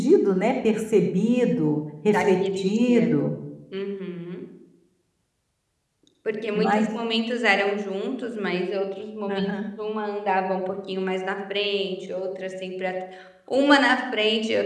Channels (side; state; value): both; identical; correlation 1.00